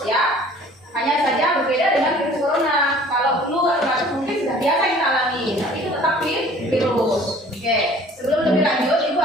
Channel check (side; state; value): both; normal; correlation 0.50